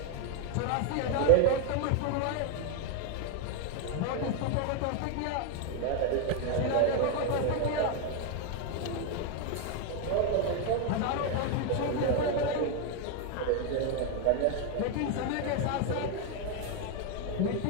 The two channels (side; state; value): both; different; correlation 0.01